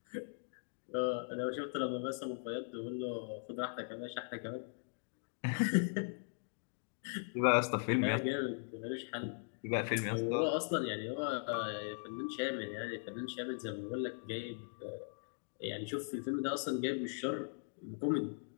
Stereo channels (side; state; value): right; silent; digital silence